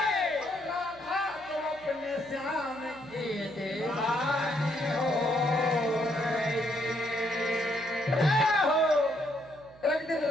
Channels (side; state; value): right; noise; hum, 24 dB below the sound